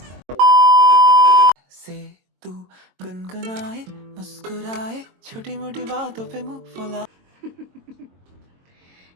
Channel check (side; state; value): left; late; 22 ms